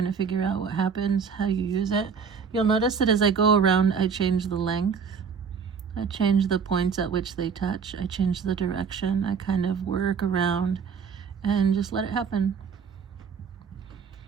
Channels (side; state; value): left; quieter; 6.3 dB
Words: to figure out what happens, how you use it, you'll notice that as I go around, I change the length. I change the points at which they touch. I change the direction. I kind of work around and just let it happen.